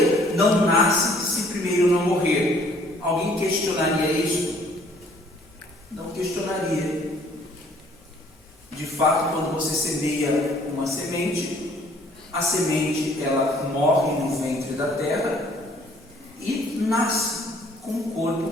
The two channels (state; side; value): normal; both; correlation 0.59